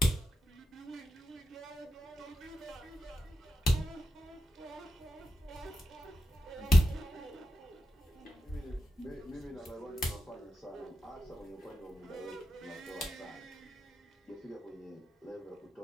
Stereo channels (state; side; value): normal; both; correlation 0.88